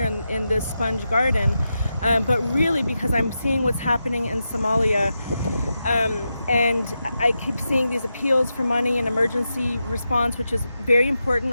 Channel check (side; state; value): both; inverted; correlation -0.89